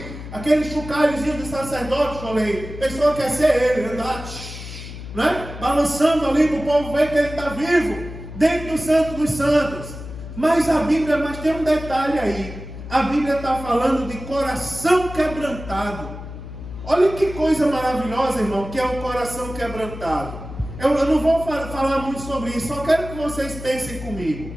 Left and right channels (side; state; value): left; noise; hum, 11 dB below the sound